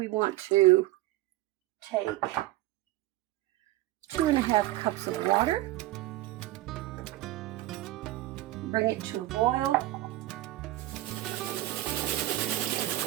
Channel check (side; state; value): left; quieter; 16.8 dB